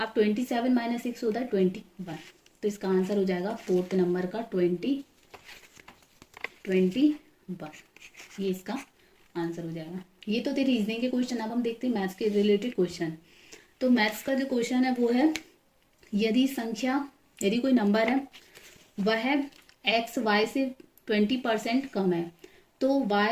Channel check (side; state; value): both; identical; correlation 1.00